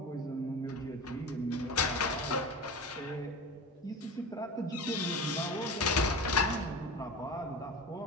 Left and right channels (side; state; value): both; normal; correlation 0.30